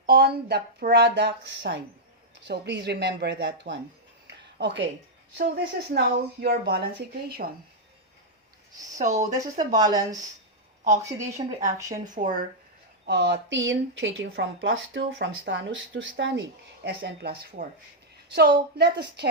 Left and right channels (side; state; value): both; normal; correlation -0.06